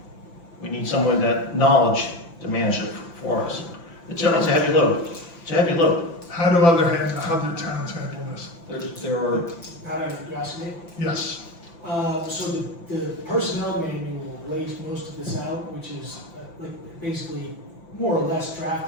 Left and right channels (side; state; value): right; late; 5.9 ms